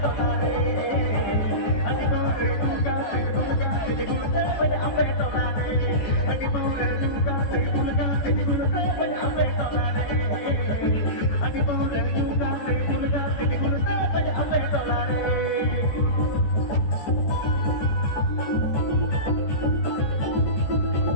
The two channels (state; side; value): late; right; 14 ms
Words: टोलारे हड्डी पोरे युगाते बुलगाते बुलते बजे अपे टोलारे हड्डी पोरे युगाते बुलगाते बुलते बजे अपे टोलारे हड्डी पोरे युगाते बुलगाते बुलते बजे अपे टोलारे